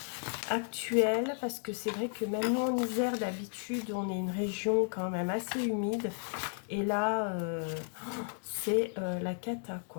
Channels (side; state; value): right; silent; 55 dB below the other